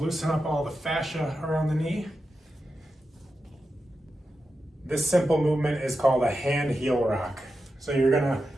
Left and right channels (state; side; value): normal; both; correlation 0.90